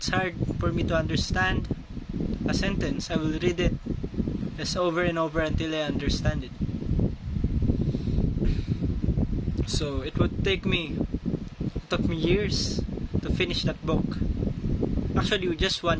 hard for me to understand. A sentence, I will read it just over and over until I understand it. So it took me years to finish that book. Actually, just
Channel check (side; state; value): both; identical; correlation 1.00